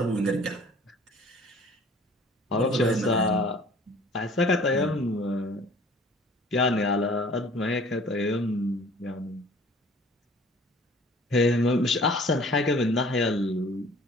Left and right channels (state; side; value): normal; both; correlation 0.50